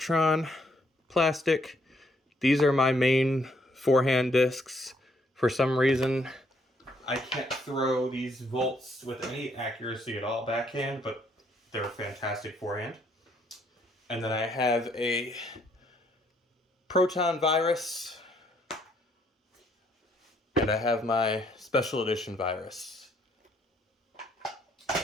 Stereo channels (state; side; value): normal; both; correlation 0.69